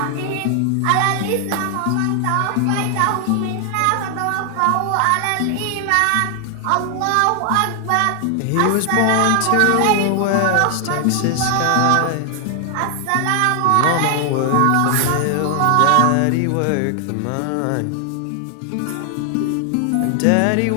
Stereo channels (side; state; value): both; different; correlation 0.00